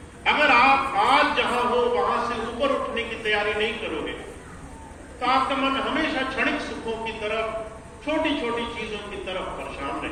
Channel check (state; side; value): identical; both; correlation 1.00